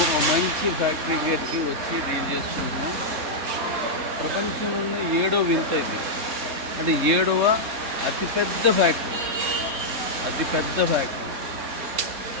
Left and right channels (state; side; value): late; left; 3.7 ms